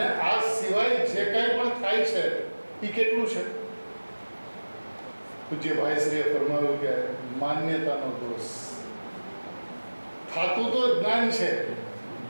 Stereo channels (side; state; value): both; inverted; correlation -1.00